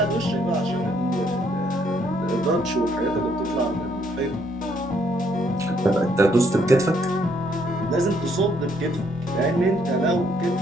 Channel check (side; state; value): both; normal; correlation 0.69